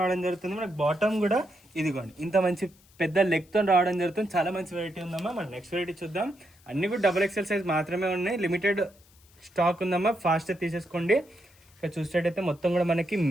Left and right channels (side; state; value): left; noise; hiss, 29 dB below the sound